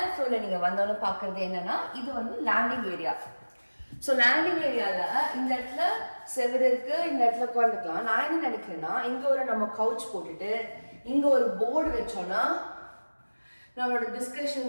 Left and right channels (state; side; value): inverted; both; correlation -1.00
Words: ஃப்ளோர்ல நீங்க வந்தோன்னு பாக்குறது என்னன்னா, இது வந்து லேண்டிங் ஏரியா. ஸோ லேண்டிங் ஏரியால இந்த இடத்துல செவரு இருக்கு, இந்த இடத்துல உட்காந்துக்கலாம். நான் என்ன நினைக்கிறேன்னா, இங்க ஒரு நம்ம கவுச் போட்டுட்டு இங்க ஒரு போர்டு வச்சோம்னா நம்மளோட